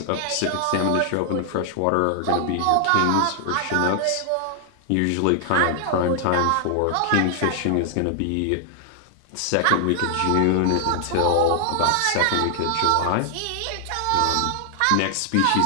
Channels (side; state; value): both; different; correlation 0.00